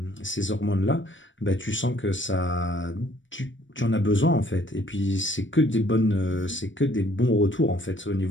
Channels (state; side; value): late; right; 0.55 ms